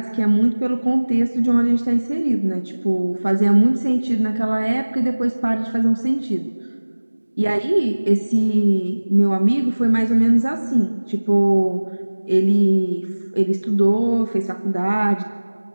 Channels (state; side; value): inverted; both; correlation -1.00